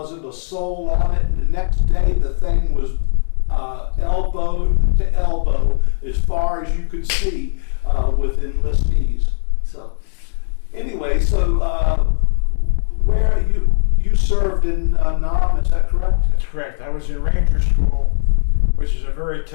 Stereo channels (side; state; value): right; silent; 67 dB below the other